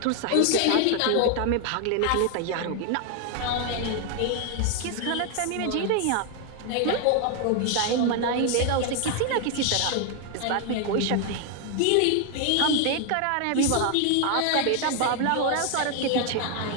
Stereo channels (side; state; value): both; different; correlation 0.01